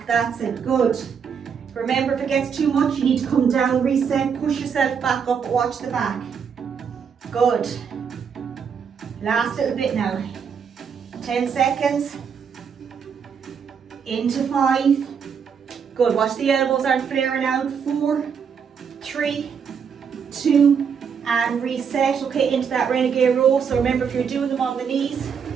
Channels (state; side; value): quieter; left; 6.8 dB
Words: that's it, good. Remember, if it gets too much, you need to come down, reset, push yourself back up, watch the back. Good. Last little bit now. 10 seconds. Into 5. Good, watch the elbows aren't flaring out. 4, 3, 2, and reset. Okay, into that renegade row. So remember, if you're doing them on the knees,